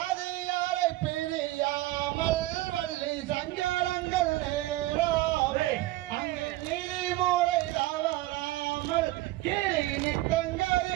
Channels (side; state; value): left; quieter; 17.5 dB